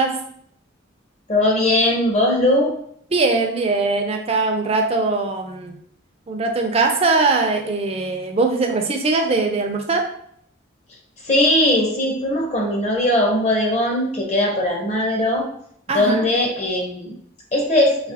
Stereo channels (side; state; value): both; normal; correlation 0.20